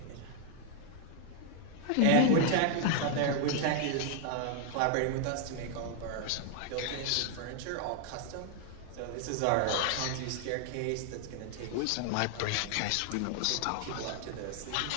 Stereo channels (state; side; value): different; both; correlation 0.00